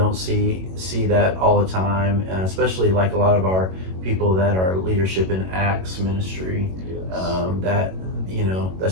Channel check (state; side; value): late; left; 22 ms